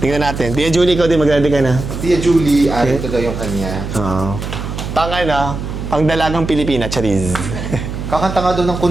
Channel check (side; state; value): right; noise; hum, 6 dB below the sound